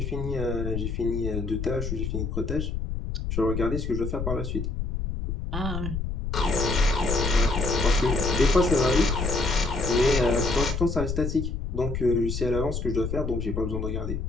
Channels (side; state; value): left; noise; rumble, 3 dB below the sound